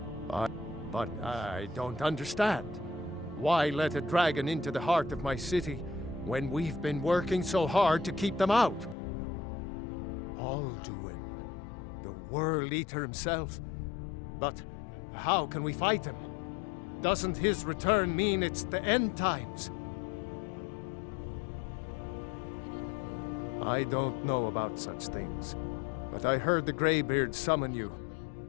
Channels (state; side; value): drops out; right; at 9.0 s